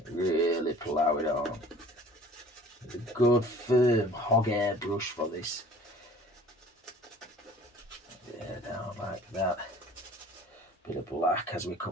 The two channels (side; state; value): both; normal; correlation 0.48